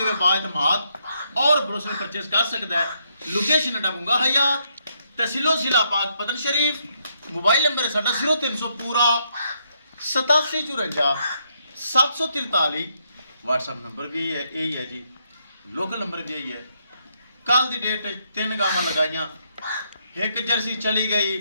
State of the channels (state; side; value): inverted; both; correlation -0.76